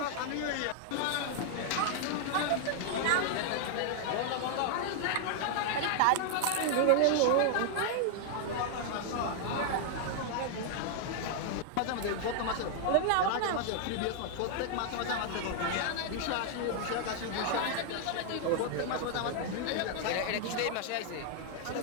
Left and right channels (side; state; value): both; different; correlation 0.00